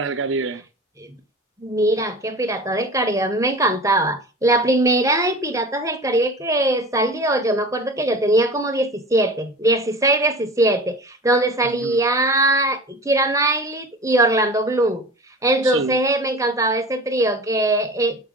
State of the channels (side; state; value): both; normal; correlation 0.36